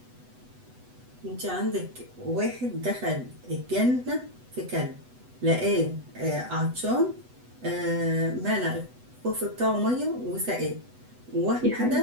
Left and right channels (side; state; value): left; late; 8.0 ms